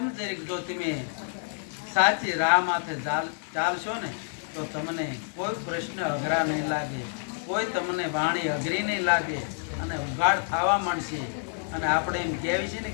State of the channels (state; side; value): silent; right; digital silence